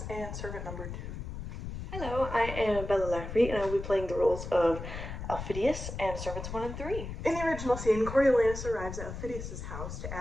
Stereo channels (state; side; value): noise; left; rumble, 8 dB below the sound